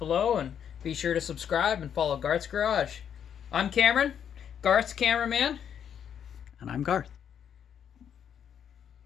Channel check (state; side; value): quieter; right; 8.5 dB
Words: and be sure to subscribe and follow Garth's Garage. I'm Cameron, Garth's cameraman, And I'm Garth.